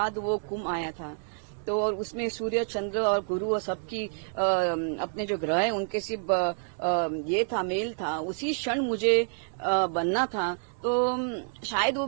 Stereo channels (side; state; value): left; silent; digital silence